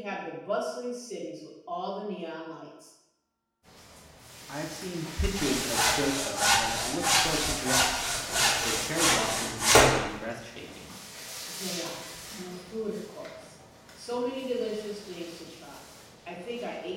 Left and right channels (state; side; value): identical; both; correlation 1.00